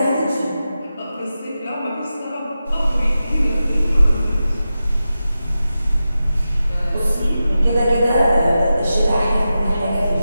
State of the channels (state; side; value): inverted; both; correlation -0.92